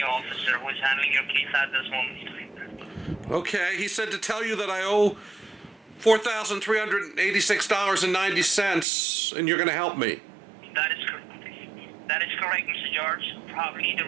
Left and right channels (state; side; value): drops out; left; at 8.8 s